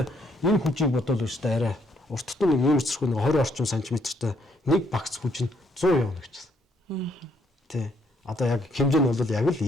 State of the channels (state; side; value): normal; both; correlation 0.70